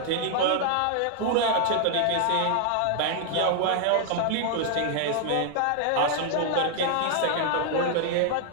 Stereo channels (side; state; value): both; different; correlation -0.01